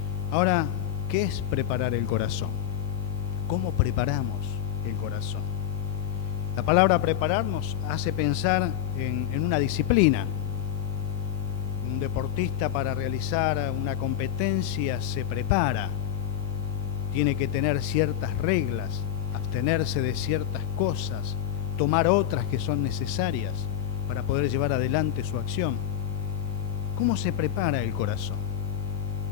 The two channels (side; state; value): right; quieter; 10.6 dB